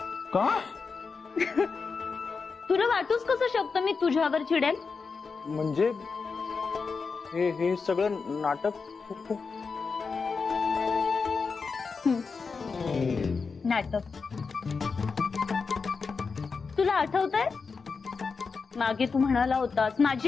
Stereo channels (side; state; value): right; quieter; 4.9 dB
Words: का? तुला वाटूच कसं शकतं मी तुझ्यावर चिडेल? म्हणजे हे सगळं नाटक नाटक. तुला आठवतंय मागे तू म्हणाला होतास